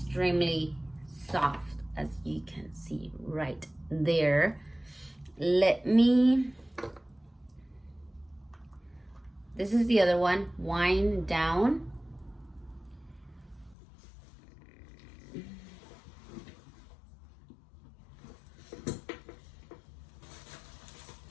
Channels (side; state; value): right; drops out; at 13.8 s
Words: soft, as you can see right there. This is the other one, Wind Down.